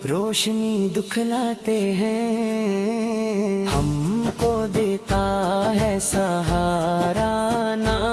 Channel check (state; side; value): identical; both; correlation 1.00